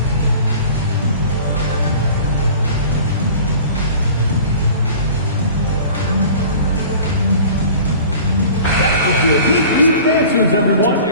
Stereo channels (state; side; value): inverted; both; correlation -0.44